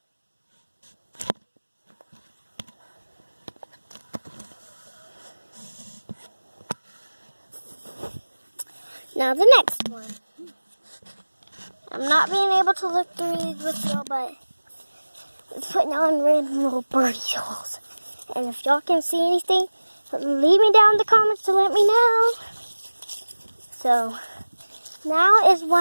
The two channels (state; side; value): inverted; both; correlation -1.00